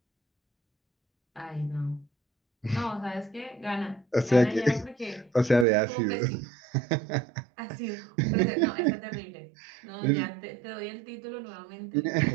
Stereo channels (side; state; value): left; drops out; at 5.7 s